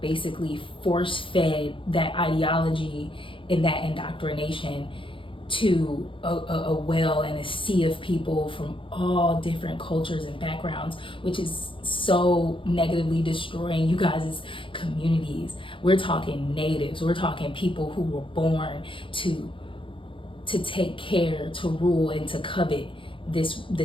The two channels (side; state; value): right; late; 0.25 ms